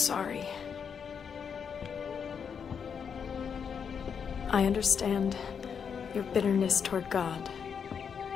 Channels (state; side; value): quieter; right; 6.9 dB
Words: I understand your bitterness toward God.